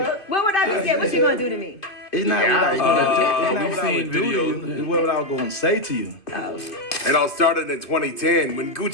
What would I be saying? What you gonna do to me? It's not what I was going to do to you. It's what I was going to say to you. Oh. It all started in 2010 when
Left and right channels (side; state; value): right; late; 2.5 ms